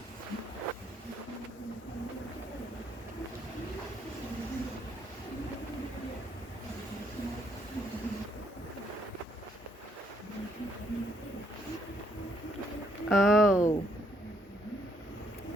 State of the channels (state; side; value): normal; both; correlation 0.71